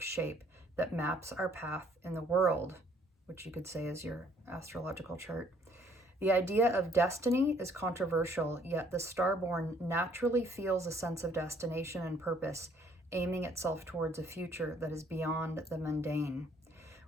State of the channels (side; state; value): both; normal; correlation 0.62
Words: shape that maps our path in the world, which you could say is your astrological chart. The idea of destiny is controversial, yet the Starborn naturally feels a sense of destination and purpose, aiming itself towards a future that is beyond the mundane.